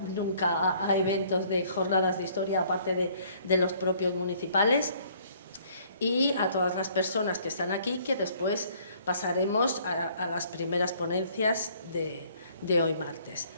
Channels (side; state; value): both; inverted; correlation -0.60